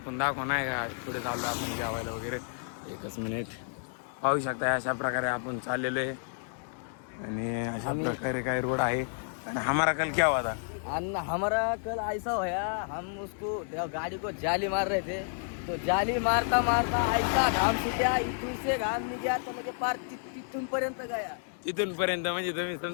दाखवू नाही का पुढे चाललोय आपण जेवायला वगैरे. एकच मिनिट. पाहू शकता अशा प्रकारे आपण चाललेलो आहे आणि अशा प्रकारे काही रोड आहे. आणि हमारा कल क्या हुआ था? हमारा कल ऐसा होया, हम उसको गाड़ी को जाली मार रहे थे, तो जाली मारता मारता ऐसा घाम सुट्या, इथून से घाम निघा तो म्हणजे पार तिथून पर्यंत गया. तिथून पर्यंत म्हणजे तुम्ही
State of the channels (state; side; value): silent; right; digital silence